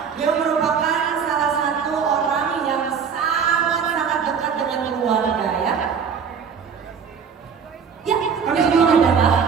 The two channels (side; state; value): left; quieter; 6.6 dB